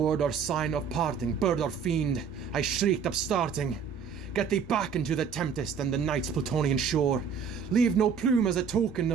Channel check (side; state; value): left; quieter; 6.6 dB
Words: or sign of parting, bird or fiend, I shrieked upstarting, get thee back into the tempest and the night's Plutonian shore. Leave no plume as a token